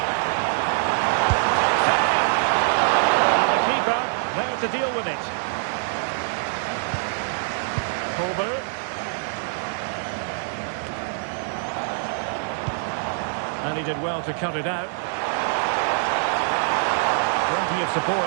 And the keeper there to deal with it. Kolber. And he did well to cut it out. Plenty of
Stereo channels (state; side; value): silent; left; digital silence